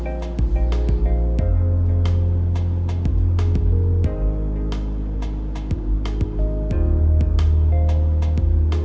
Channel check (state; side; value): identical; both; correlation 1.00